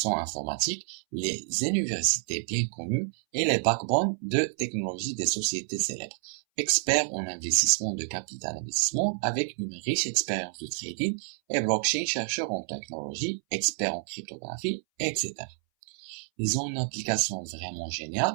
informatique, les universités bien connues et les backbones de technologie des sociétés célèbres. Experts en investissement de capital investissement avec une riche expérience de trading et blockchain, chercheurs en technologie, experts en cryptographie, etc. Ils ont une application vraiment géniale.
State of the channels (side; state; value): left; silent; 59 dB below the other